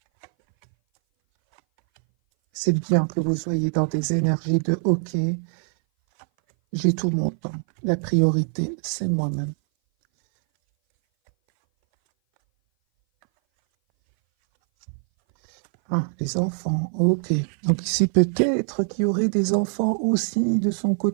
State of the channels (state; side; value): silent; left; 59 dB below the other